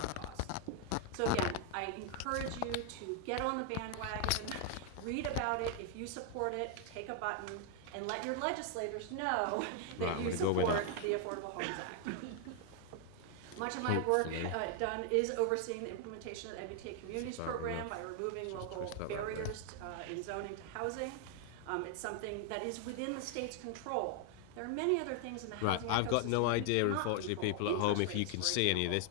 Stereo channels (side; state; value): both; different; correlation 0.00